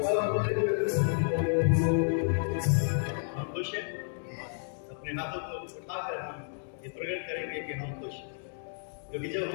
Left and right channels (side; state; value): right; silent; digital silence